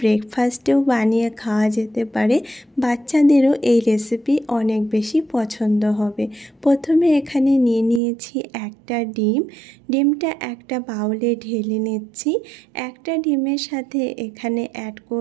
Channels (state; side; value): drops out; left; at 8.0 s